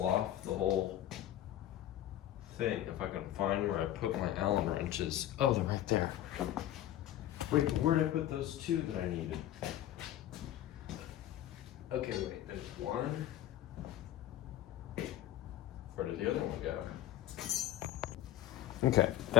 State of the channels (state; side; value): quieter; right; 12.8 dB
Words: off the whole thing. If I can find where I put my Allen wrenches. Oh, they're right there. Wait, where did I put those two that I needed? Okay, wait, there's one. Where did the other one go? Okay,